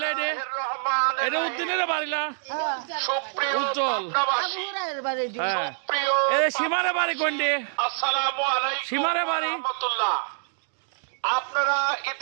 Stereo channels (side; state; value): left; silent; digital silence